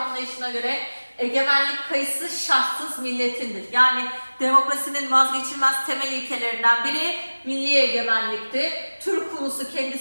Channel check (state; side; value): inverted; both; correlation -1.00